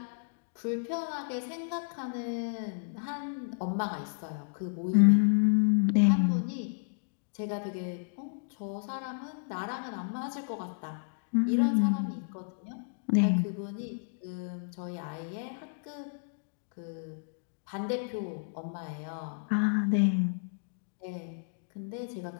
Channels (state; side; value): silent; right; digital silence